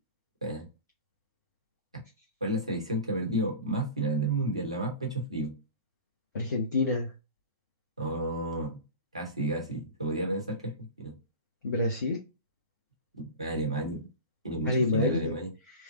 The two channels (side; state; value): both; inverted; correlation -0.32